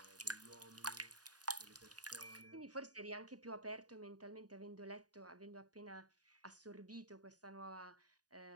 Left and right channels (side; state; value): left; late; 0.68 ms